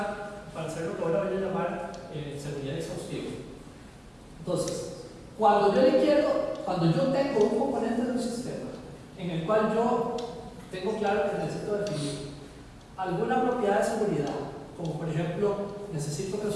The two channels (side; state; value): both; identical; correlation 1.00